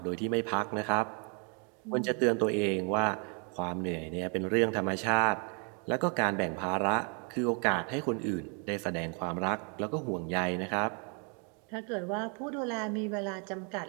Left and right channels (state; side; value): quieter; left; 37.4 dB